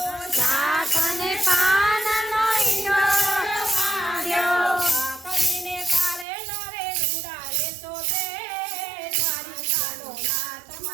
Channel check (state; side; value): drops out; left; at 6.2 s